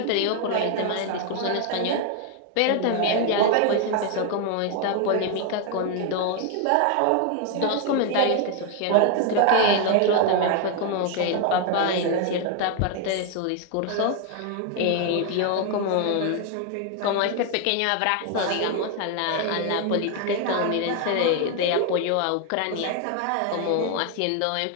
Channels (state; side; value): different; both; correlation 0.01